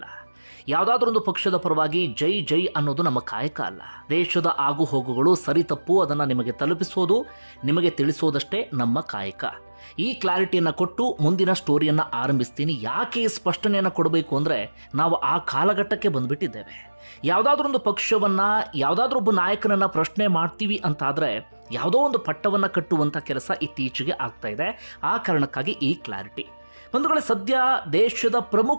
ಯಾವುದಾದ್ರೊಂದು ಪಕ್ಷದ ಪರವಾಗಿ ಜೈ ಜೈ ಅನ್ನೋದು ನಮ್ಮ ಕಾಯಕ ಅಲ್ಲ. ದೇಶದ ಆಗು ಹೋಗುಗಳು ಸರಿ ತಪ್ಪು ಅದನ್ನು ನಿಮಗೆ ತಲುಪಿಸೋದು, ನಿಮಗೆ ತಿಳಿಸೋದಷ್ಟೇ ನಮ್ಮ ಕಾಯಕ. ಈ ಕ್ಲಾರಿಟಿಯನ್ನು ಕೊಟ್ಟು ಮುಂದಿನ ಸ್ಟೋರಿಯನ್ನು ಆರಂಭಿಸ್ತೀನಿ. ಯಾಕೆ ಈ ಸ್ಪಷ್ಟನೆಯನ್ನು ಕೊಡಬೇಕು ಅಂದರೆ, ನಾವು ಆ ಕಾಲಘಟ್ಟಕ್ಕೆ ಬಂದುಬಿಟ್ಟಿದ್ದೇವೆ. ಯಾವುದಾದ್ರೊಂದು ಪಕ್ಷವನ್ನು, ಯಾವುದಾದ್ರೊಬ್ಬ ನಾಯಕನನ್ನು ಪ್ರಶ್ನೆ ಮಾಡ್ತೀವಿ ಅಂತಾದರೆ ಯಾವುದೋ ಒಂದು ಪಟ್ಟವನ್ನು ಕಟ್ಟುವಂಥ ಕೆಲಸ ಇತ್ತೀಚೆಗೆ ಆಗ್ತಾ ಇದೆ. ಆ ಕಾರಣಕ್ಕಾಗಿ ಈ ಕ್ಲಾರಿಟಿ. ಬಂಧುಗಳೇ, ಸದ್ಯ ದೇಶದ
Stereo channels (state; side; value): inverted; both; correlation -1.00